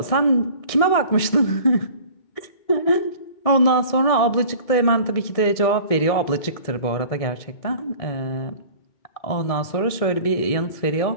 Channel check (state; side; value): late; right; 1.7 ms